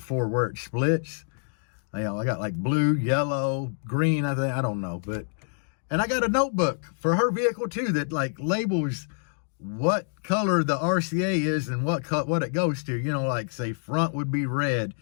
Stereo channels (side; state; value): right; silent; digital silence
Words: where it splits. I got like blue, yellow, green, I don't know. And I got a notebook for her vehicle too that like labels what color the RCA is and what it goes to. Like say front would be red,